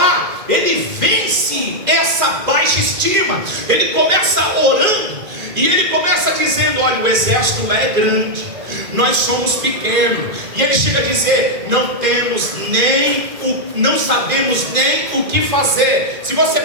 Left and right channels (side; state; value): left; late; 2.4 ms